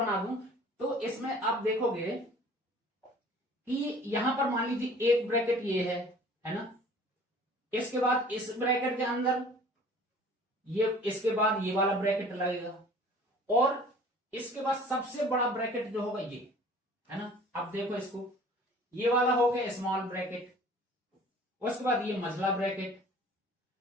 दूं तो इसमें आप देखोगे कि यहां पर मान लीजिए एक ब्रैकेट ये है ना, इसके बाद इस ब्रैकेट के अंदर ये, इसके बाद ये वाला ब्रैकेट लगेगा, और इसके बाद सबसे बड़ा ब्रैकेट जो होगा ये, है ना। अब देखो इसको, ये वाला हो गया स्मॉल ब्रैकेट, उसके बाद ये मझला ब्रैकेट,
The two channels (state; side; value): normal; both; correlation 0.49